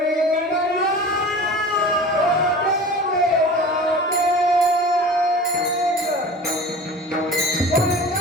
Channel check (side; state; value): both; normal; correlation 0.37